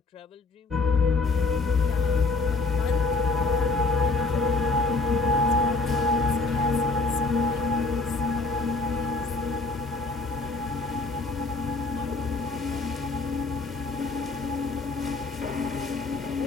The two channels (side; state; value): right; quieter; 3.6 dB